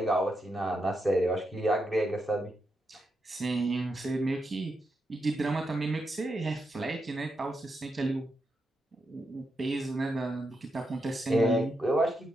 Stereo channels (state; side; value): normal; both; correlation 0.84